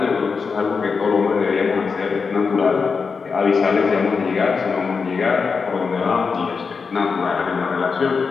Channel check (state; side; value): quieter; right; 5.2 dB